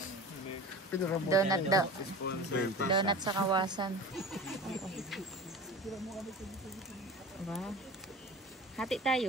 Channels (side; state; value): both; normal; correlation 0.35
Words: Donut daw. Donut sa Kawasan. Wow. Hati